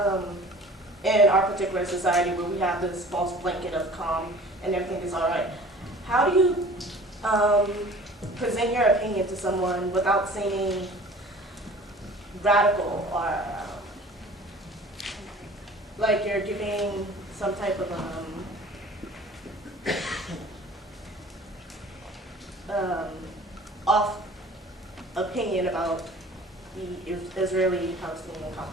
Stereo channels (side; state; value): both; normal; correlation 0.46